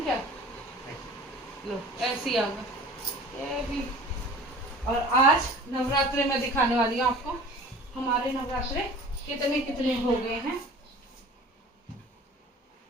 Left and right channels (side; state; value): both; normal; correlation 0.43